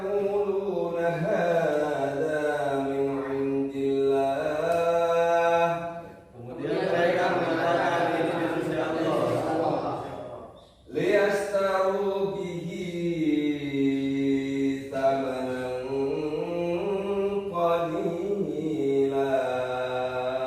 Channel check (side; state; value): both; identical; correlation 1.00